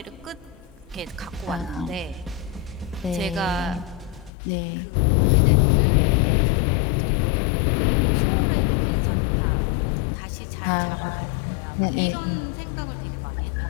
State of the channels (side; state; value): right; drops out; at 4.3 s